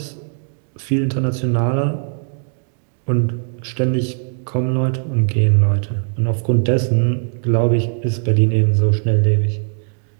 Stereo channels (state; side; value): silent; left; digital silence